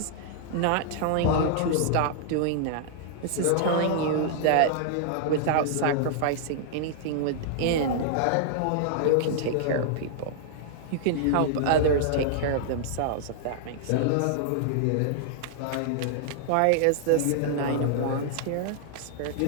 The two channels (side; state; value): both; different; correlation -0.01